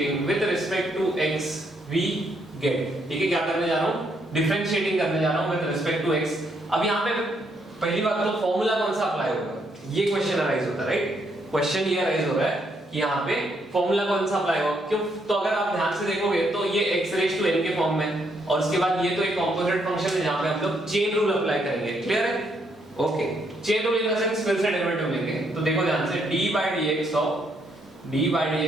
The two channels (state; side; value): normal; both; correlation 0.74